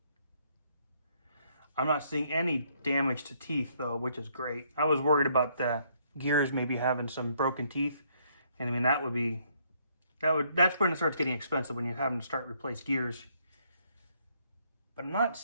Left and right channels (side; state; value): both; inverted; correlation -0.69